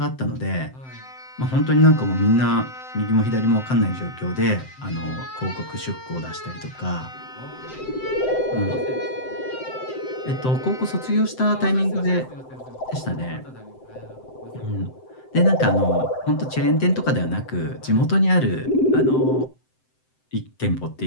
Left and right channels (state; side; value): late; right; 7.8 ms